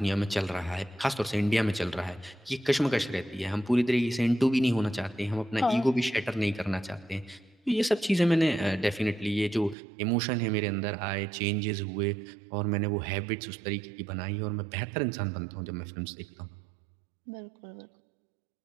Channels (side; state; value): left; drops out; at 9.8 s